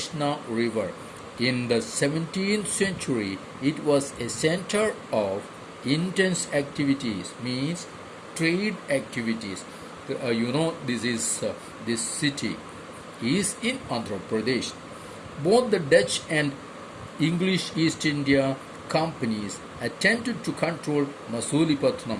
River. In the 17th century, it was a center of intense activities, means trade activities. This city is in Andhra Pradesh. Both the Dutch and English East India companies attempted to control Masulipattnam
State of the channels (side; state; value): both; identical; correlation 1.00